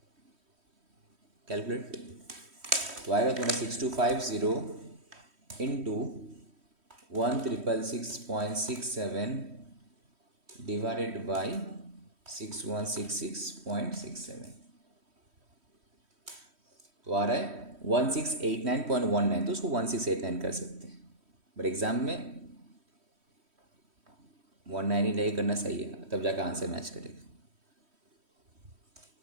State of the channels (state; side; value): late; left; 3.1 ms